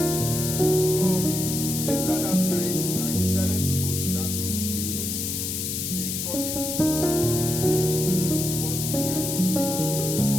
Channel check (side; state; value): left; noise; hiss, 3 dB below the sound